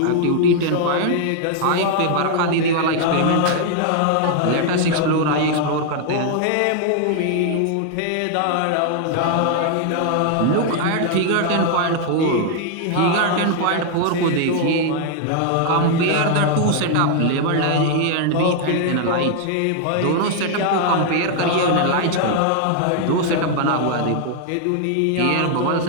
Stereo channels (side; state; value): both; different; correlation 0.00